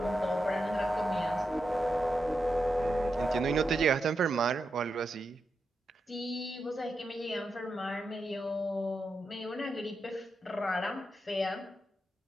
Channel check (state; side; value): normal; both; correlation 0.87